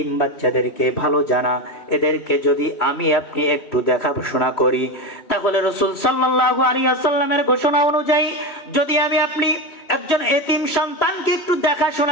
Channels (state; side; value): late; right; 3.2 ms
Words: বাচ্চাদেরকে ভালো জানা, এদেরকে যদি আমি আপনি একটু দেখাশোনা করি, তাহলে রাসূল সাল্লাল্লাহু আলাইহি ওয়াসাল্লামের ঘোষণা অনুযায়ী যদি আমি আপনি একজন এতিম সন্তানকে একটু